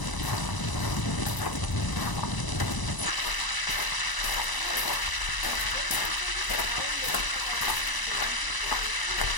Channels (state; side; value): late; right; 1.0 ms